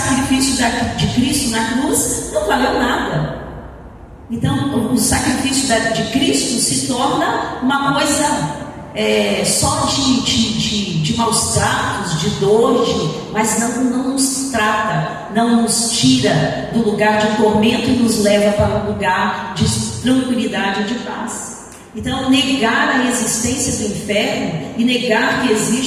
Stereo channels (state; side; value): identical; both; correlation 1.00